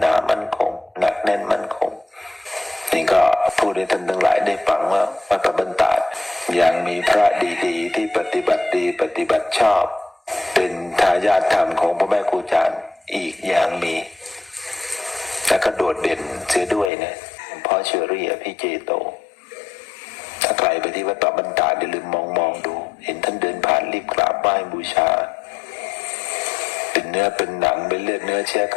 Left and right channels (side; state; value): right; drops out; at 16.9 s